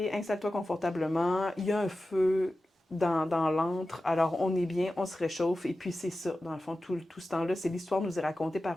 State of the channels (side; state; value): both; normal; correlation 0.94